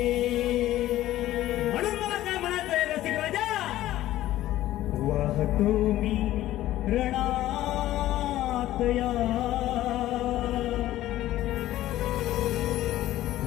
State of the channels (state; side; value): quieter; right; 14.5 dB